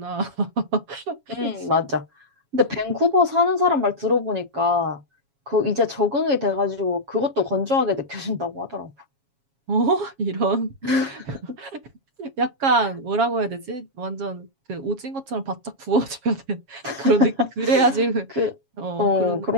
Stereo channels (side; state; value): left; late; 7.3 ms